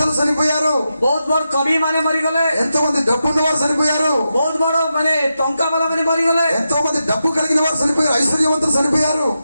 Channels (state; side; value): inverted; both; correlation -0.88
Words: చనిపోయారు, ବହୁତ ବଡ କବି ମାନେ ମରିଗଲେ, ఎంతో మంది డబ్బున్న వారు చనిపోయారు, ବହୁତ ବଡ ମାନେ ଟଙ୍କା ବାଲା ମାନେ ମରିଗଲେ, ఎంతో మంది డబ్బు కలిగిన వారు చనిపోయారు, ఐశ్వర్యవంతులు చనిపోయారు.